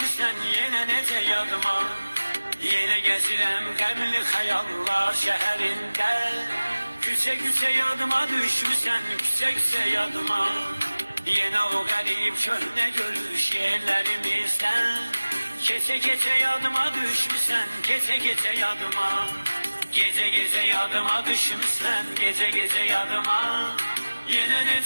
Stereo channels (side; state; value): both; inverted; correlation -1.00